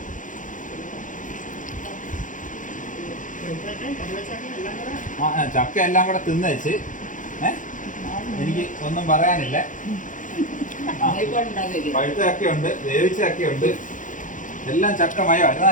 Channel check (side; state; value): right; late; 0.38 ms